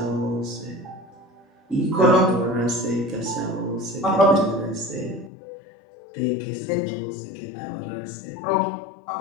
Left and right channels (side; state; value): right; drops out; at 5.3 s